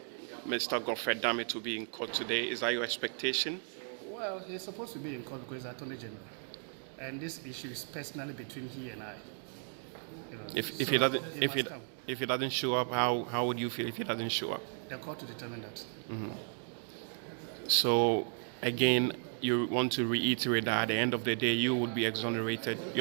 Godfrey Dame to be in court today? Is that your expectation? Well, he's supposed to be in court because he's Attorney General. And this issue is personally between he and I. You know, If he doesn't show up, how would you feel if he doesn't show up? The court to determine that. So again, you want to reiterate that at the end of the day, you would be exonerated.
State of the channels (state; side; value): silent; left; 54 dB below the other